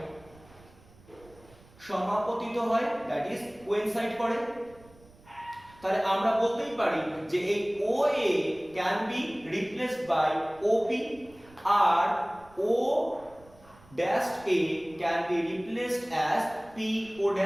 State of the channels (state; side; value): noise; right; rumble, 25 dB below the sound